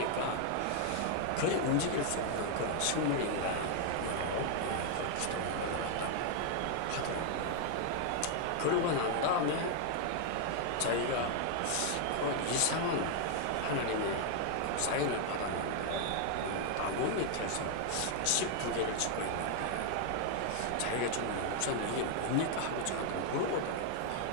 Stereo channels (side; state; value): both; different; correlation 0.00